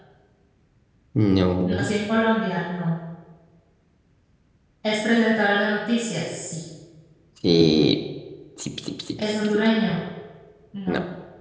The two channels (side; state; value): both; identical; correlation 1.00